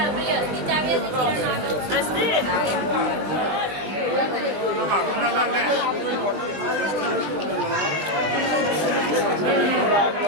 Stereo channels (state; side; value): late; left; 20 ms